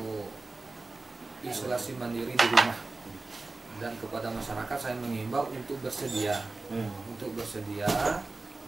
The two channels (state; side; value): quieter; left; 3.4 dB